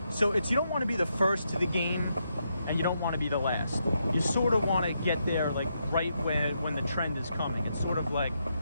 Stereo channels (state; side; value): inverted; both; correlation -0.81